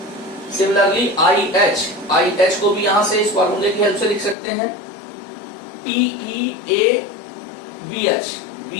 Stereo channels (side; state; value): right; drops out; at 4.4 s